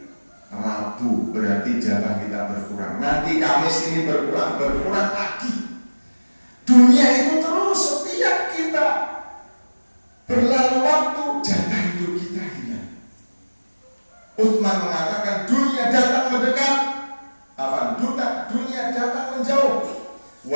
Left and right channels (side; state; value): both; inverted; correlation -1.00